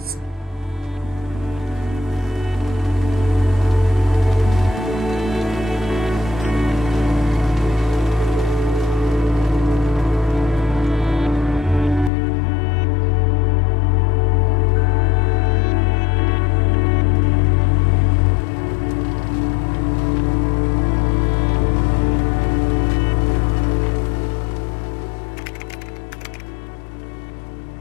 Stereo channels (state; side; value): drops out; right; at 12.1 s